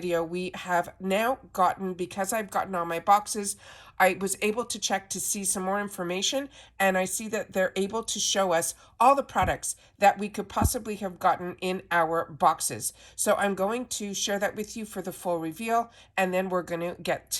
we have now gotten, because I've gotten all my boxes, I was able to check to see some more information, and I see that they're able to show us all the products that we could possibly have gotten in our boxes. So I'm going to share that with you for the full reveal, and then we're going to get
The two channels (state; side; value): identical; both; correlation 1.00